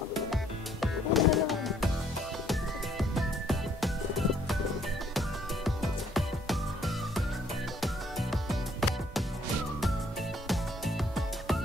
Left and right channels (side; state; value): both; normal; correlation 0.65